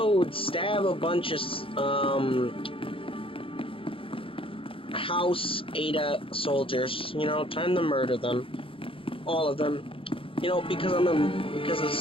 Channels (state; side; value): late; right; 0.26 ms